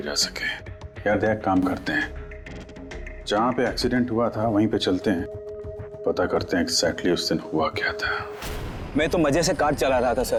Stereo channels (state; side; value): identical; both; correlation 1.00